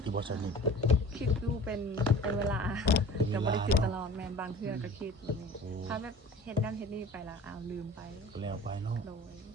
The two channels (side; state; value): both; normal; correlation 0.43